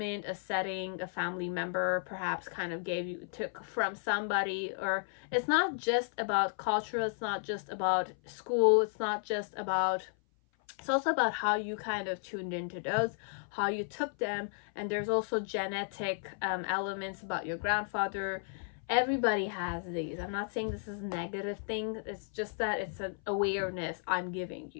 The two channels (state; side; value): silent; right; 55 dB below the other